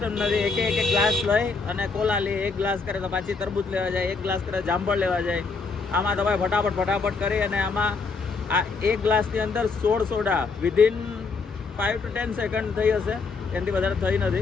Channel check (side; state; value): right; quieter; 4.5 dB